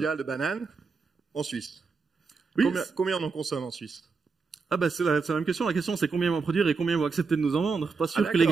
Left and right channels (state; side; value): quieter; left; 4.7 dB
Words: de bananes en Suisse. Oui. Combien on en consomme en Suisse? Ah bah c'est la même question. La question c'est combien ils vont produire et combien ils vont accepter de nous en vendre. Pas sûr que les